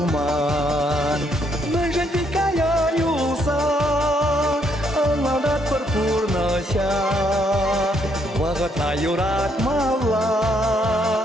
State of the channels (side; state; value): both; normal; correlation 0.72